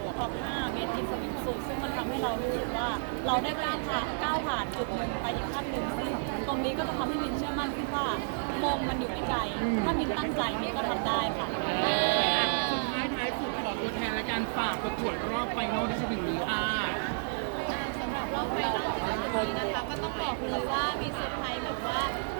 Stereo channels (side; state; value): left; silent; digital silence